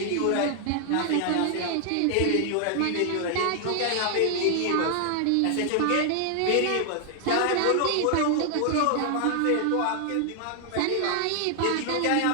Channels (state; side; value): different; both; correlation 0.00